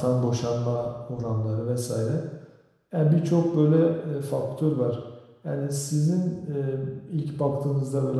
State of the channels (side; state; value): both; identical; correlation 1.00